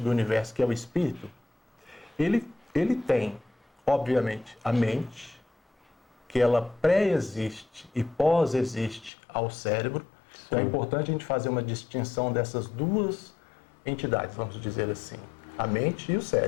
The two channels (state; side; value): drops out; right; at 9.1 s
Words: do universo, que é o espírito, ele tem, obviamente, a mente, que ela pré-existe e pós-existe ao cérebro. Então é importante a gente fazer uma distinção dessas duas entidades, vamos dizer assim, a mente e o